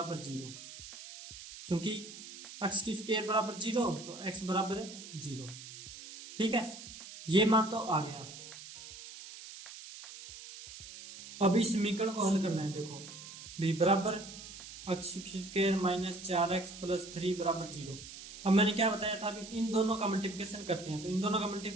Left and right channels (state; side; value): noise; right; hiss, 13 dB below the sound